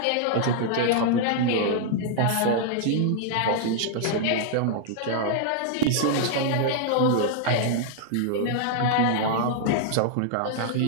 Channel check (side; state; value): both; different; correlation -0.01